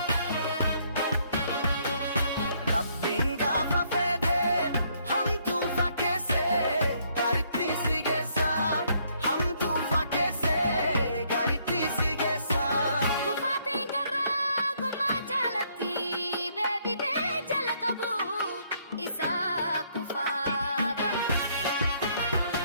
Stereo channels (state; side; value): inverted; both; correlation -0.69